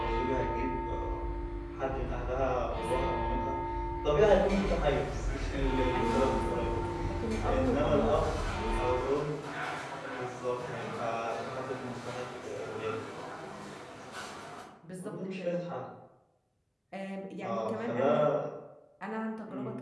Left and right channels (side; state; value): both; identical; correlation 1.00